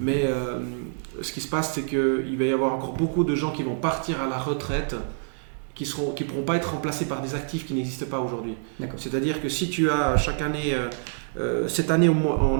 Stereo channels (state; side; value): silent; left; digital silence